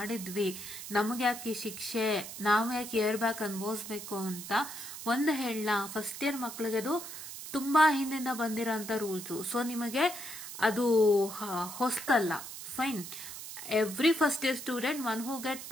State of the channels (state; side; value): noise; right; hiss, 10 dB below the sound